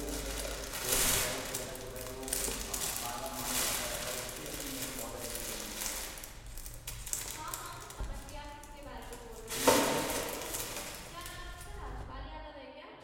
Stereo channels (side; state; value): both; identical; correlation 1.00